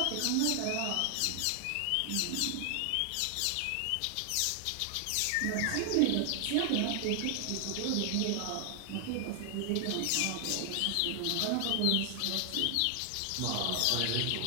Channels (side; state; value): both; different; correlation 0.00